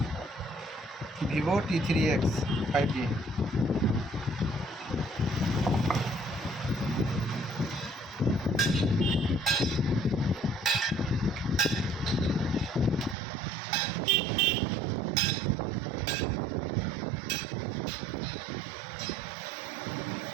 Vivo T3X 5G।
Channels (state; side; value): drops out; left; at 13.2 s